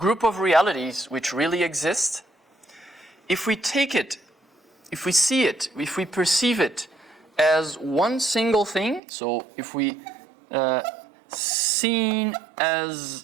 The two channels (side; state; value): left; drops out; at 9.0 s